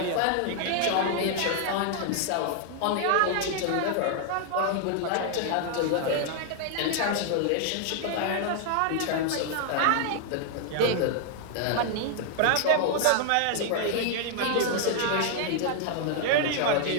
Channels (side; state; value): both; different; correlation 0.00